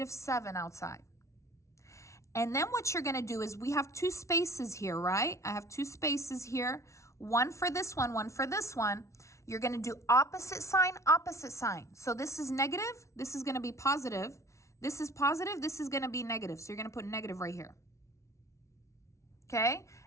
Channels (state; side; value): late; right; 0.14 ms